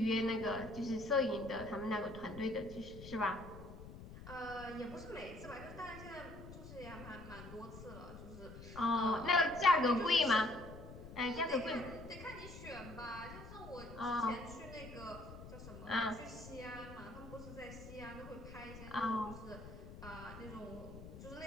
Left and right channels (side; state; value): left; noise; rumble, 13 dB below the sound